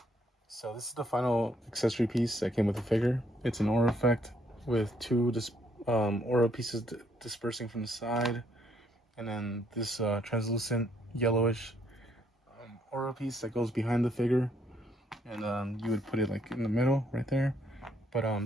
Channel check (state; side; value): normal; both; correlation 0.70